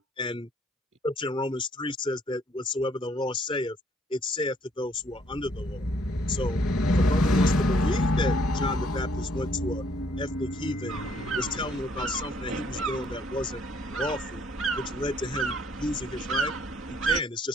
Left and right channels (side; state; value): both; normal; correlation 0.65